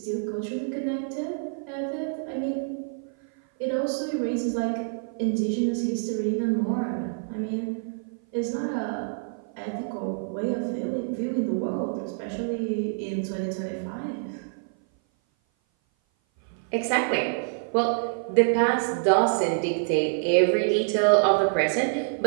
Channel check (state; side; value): silent; left; 56 dB below the other